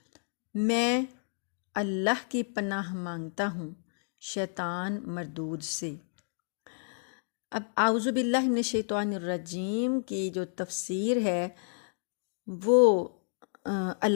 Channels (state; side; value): silent; right; digital silence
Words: میں اللہ کی پناہ مانگتا ہوں شیطان مردود سے۔ اب اعوذ باللہ من الشیطان الرجیم کی جو تفسیر ہے وہ